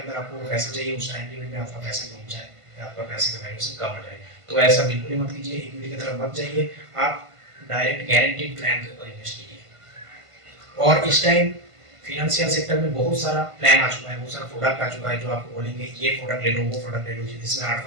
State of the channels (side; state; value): left; late; 1.5 ms